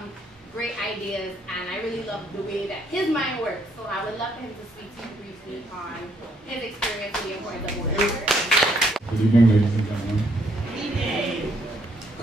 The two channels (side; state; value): both; normal; correlation 0.71